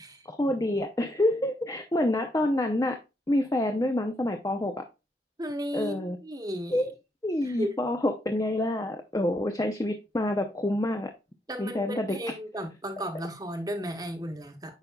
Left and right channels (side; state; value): both; normal; correlation 0.76